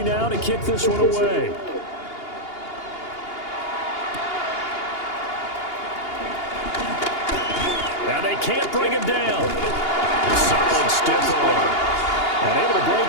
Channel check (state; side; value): late; right; 2.8 ms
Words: now to kick this one away. Now they can't bring him down. A solid stiff arm. And able to break